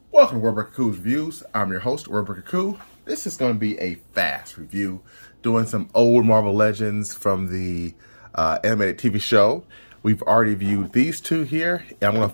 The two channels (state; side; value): inverted; both; correlation -1.00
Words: Welcome to Wordbreaker Coo's Reviews. I'm your host, Wordbreaker Coo. This is going to be a fast review, doing some old Marvel Legends from the animated TV show. We've already viewed these two here, and I'm going to